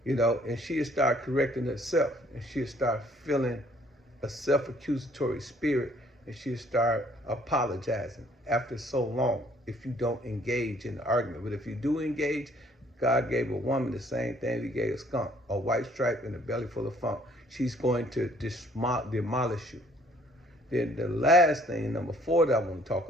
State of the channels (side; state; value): both; normal; correlation 0.61